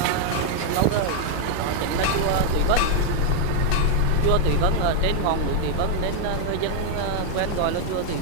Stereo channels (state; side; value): different; both; correlation 0.01